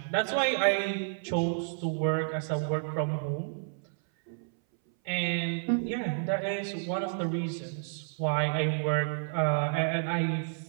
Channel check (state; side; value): silent; left; 58 dB below the other